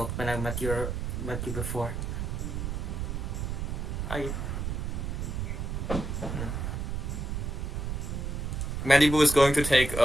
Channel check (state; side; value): noise; right; rumble, 3 dB below the sound